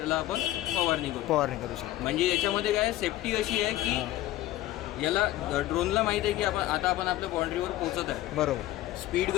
आपण फवारणी करू. फवारणी करू शकतो. म्हणजे याच्यामध्ये काय सेफ्टी अशी आहे की याला ड्रोनला माहीत आहे की आपण आपल्या बाउंड्रीवर पोहोचत आहे. बरोबर. स्पीड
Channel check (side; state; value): right; quieter; 15.2 dB